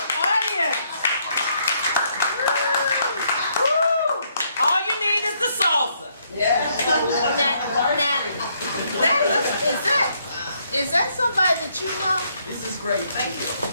audience. Woo. All you need is the salsa. Is that somebody that you know? This is great. Thank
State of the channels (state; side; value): inverted; both; correlation -0.72